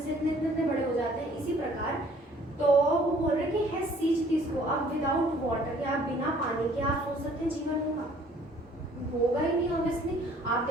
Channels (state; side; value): normal; both; correlation 0.57